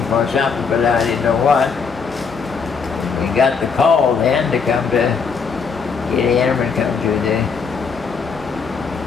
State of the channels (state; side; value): quieter; right; 5.5 dB